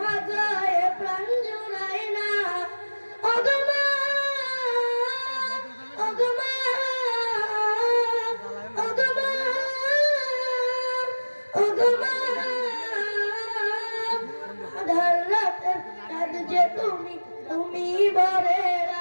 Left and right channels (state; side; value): inverted; both; correlation -1.00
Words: প্রাণ জুড়ায় না। ওগো মা, ওগো মা, ওগো মা, ওগো মা। আধার রাতের চাঁদ যে তুমি তুমি ভোরের